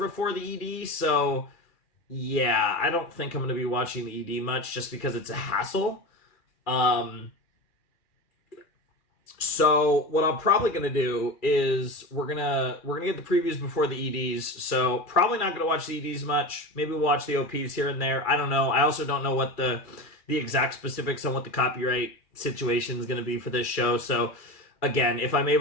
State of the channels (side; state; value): right; late; 2.4 ms